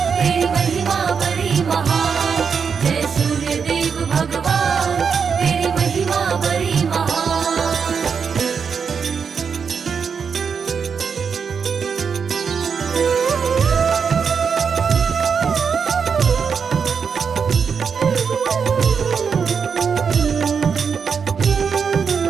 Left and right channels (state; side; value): quieter; left; 6.2 dB